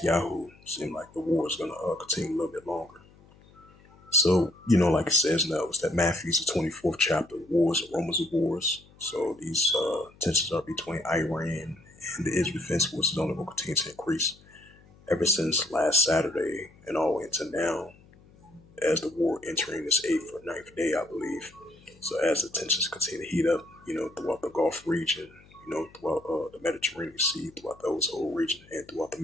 seem like the war is going to continue a little bit longer. So, like it says now, it's that Matthew's the 24th chapter, wars and rumors of wars. So these tensions are between Iran and the Israel Defense Forces only will continue to increase ever since last Saturday and all the way into now, as the war entering its 8th or 9th day, I believe. So as the tensions continue to heat up, throughout the Gulf region, throughout the Mediterranean Sea, throughout those whole region, and throughout the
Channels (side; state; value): left; noise; hum, 26 dB below the sound